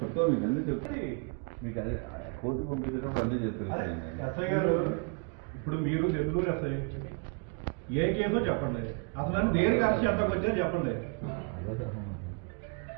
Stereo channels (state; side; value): quieter; left; 35.5 dB